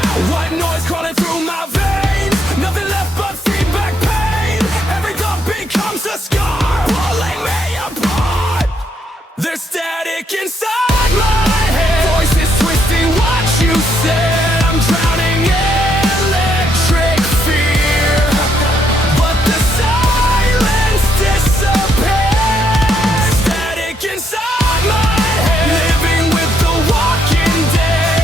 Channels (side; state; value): both; normal; correlation 0.75